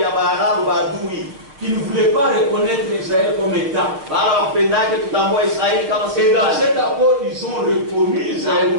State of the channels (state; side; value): late; left; 6.7 ms